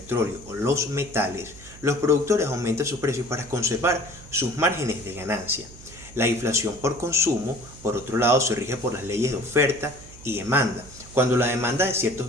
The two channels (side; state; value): right; noise; hum, 19 dB below the sound